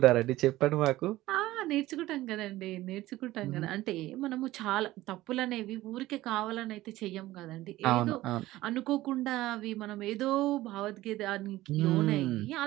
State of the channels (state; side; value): quieter; left; 16.7 dB